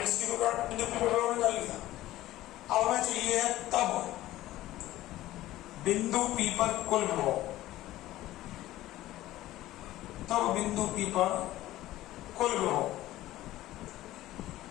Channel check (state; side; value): quieter; right; 15.5 dB